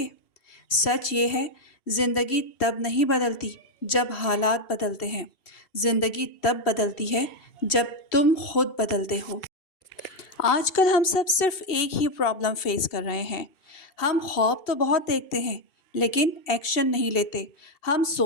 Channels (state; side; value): late; right; 2.7 ms